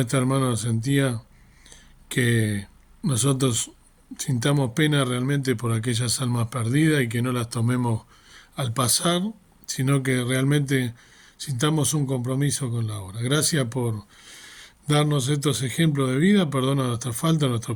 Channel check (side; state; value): both; identical; correlation 1.00